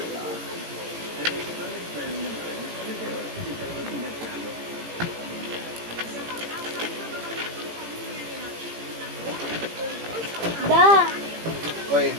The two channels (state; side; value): late; left; 18 ms